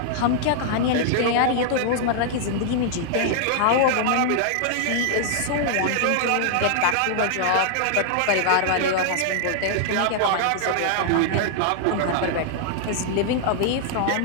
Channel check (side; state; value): both; different; correlation -0.01